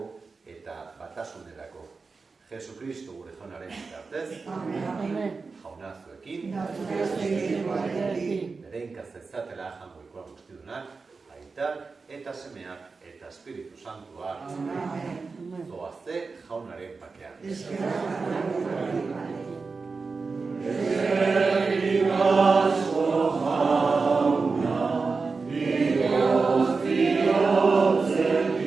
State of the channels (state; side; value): quieter; left; 4.4 dB